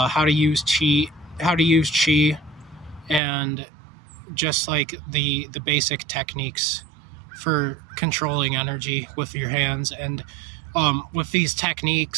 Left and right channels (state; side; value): drops out; left; at 3.2 s